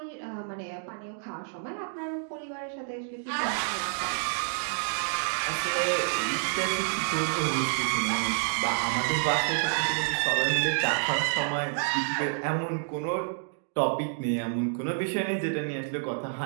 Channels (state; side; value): silent; left; digital silence